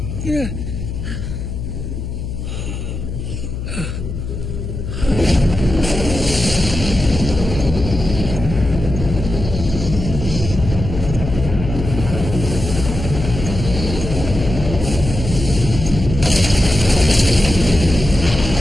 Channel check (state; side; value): noise; left; hum, 6 dB below the sound